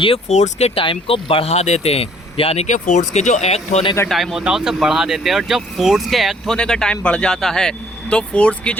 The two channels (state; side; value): normal; both; correlation 0.60